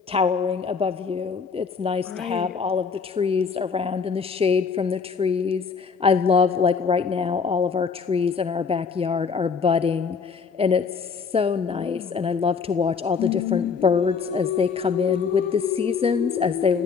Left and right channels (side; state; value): right; quieter; 5.6 dB